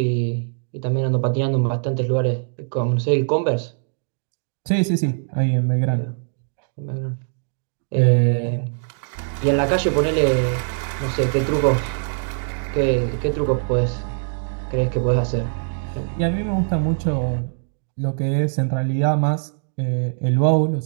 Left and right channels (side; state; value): left; silent; digital silence